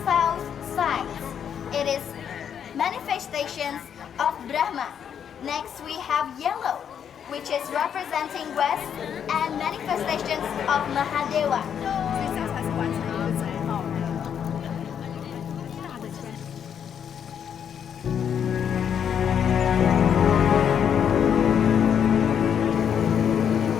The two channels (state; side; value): quieter; right; 8.3 dB